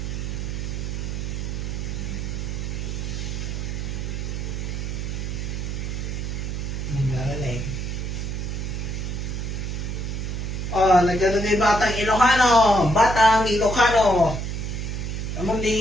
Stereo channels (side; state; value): right; noise; hum, 3 dB below the sound